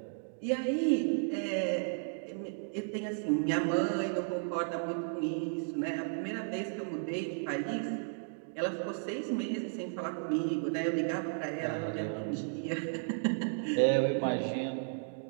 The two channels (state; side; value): silent; left; digital silence